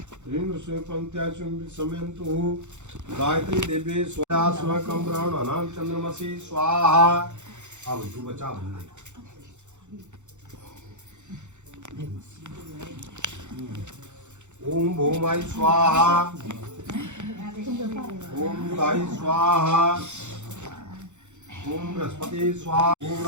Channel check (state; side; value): late; left; 0.84 ms